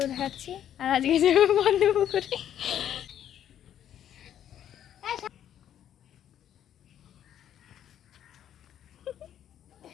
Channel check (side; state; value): right; quieter; 10.4 dB